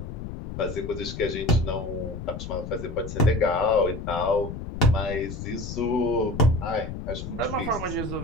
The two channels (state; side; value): noise; left; rumble, 8 dB below the sound